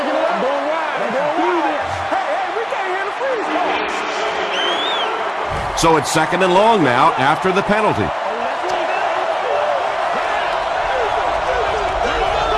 So it's 2nd and long now after the penalty.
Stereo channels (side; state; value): both; identical; correlation 1.00